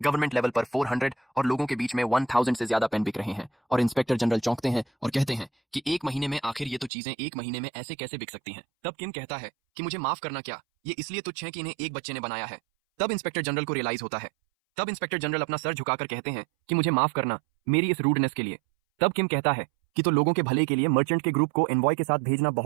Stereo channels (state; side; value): drops out; left; at 6.9 s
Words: गवर्नमेंट लेवल पर 400 और लोगों के बीच में 1000 से ज्यादा पेन बिक रहे हैं। और इंस्पेक्टर जनरल चौंकते हैं और कहते हैं कि एक महीने में, आखिर ये तो चीजें एक महीने में ऐसे कैसे बिक सकती हैं? तब किम कहता है कि मुझे माफ करना, क्या ये इसलिए तुच्छ है कि इन्हें एक बच्चे ने बनाया है? तब इंस्पेक्टर जनरल को रियलाइज होता है। तब इंस्पेक्टर जनरल अपना सर झुकाकर कहते हैं कि मुझे माफ करना मेरी इस रूडनेस के लिए। तब किम कहता है कि तो लोगों के भले के लिए मर्चेंट के ग्रुप को एनवॉय के साथ भेजना